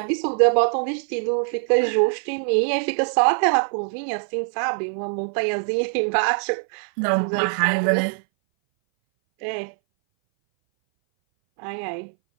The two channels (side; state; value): left; silent; 60 dB below the other